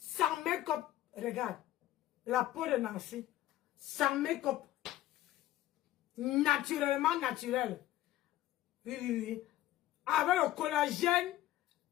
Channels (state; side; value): quieter; right; 14.4 dB